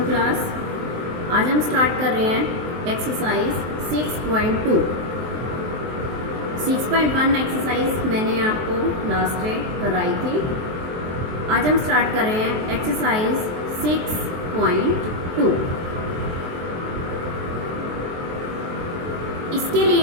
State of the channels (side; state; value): left; late; 23 ms